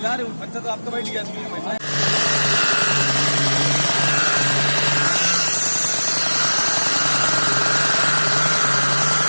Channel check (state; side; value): inverted; both; correlation -1.00